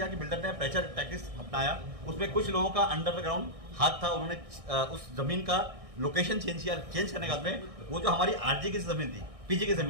कि बिल्डर ने प्रेशर टैक्टिक्स अपनाया। उसमें कुछ लोगों का अंडरग्राउंड हाथ था, उन्होंने उस जमीन का लोकेशन चेंज किया। चेंज करने के बाद में वो जो हमारी आरजी की जमीन थी, पीजी की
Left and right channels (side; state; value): left; late; 1.6 ms